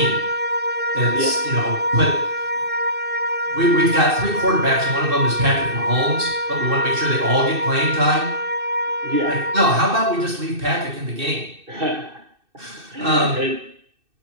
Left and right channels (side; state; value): left; late; 2.6 ms